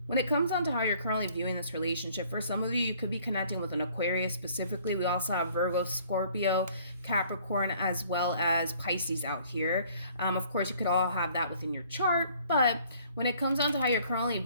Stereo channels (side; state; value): both; inverted; correlation -0.58